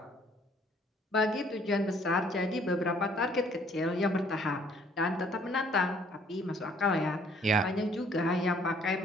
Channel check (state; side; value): normal; both; correlation 0.61